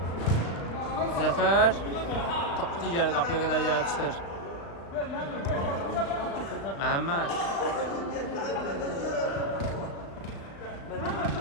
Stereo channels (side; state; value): right; late; 35 ms